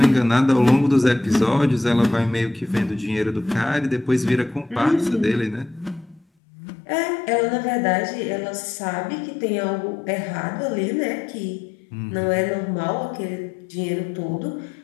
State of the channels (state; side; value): drops out; right; at 6.2 s